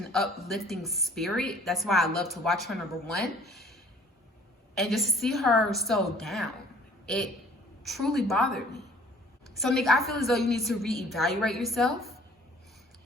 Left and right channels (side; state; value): both; normal; correlation 0.54